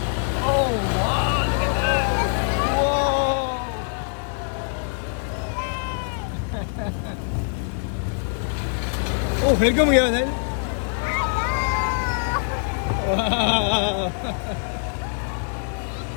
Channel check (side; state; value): right; silent; 61 dB below the other